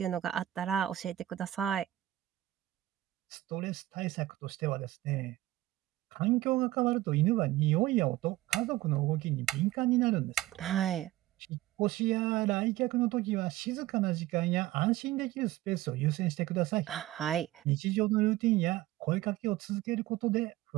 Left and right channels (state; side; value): quieter; left; 15.8 dB